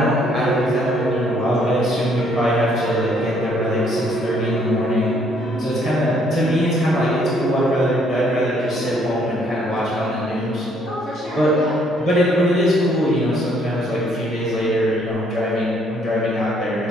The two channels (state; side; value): normal; both; correlation 0.66